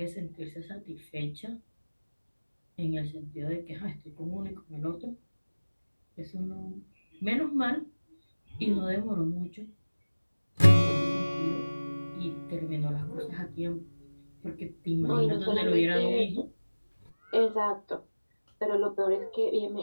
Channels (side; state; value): both; inverted; correlation -1.00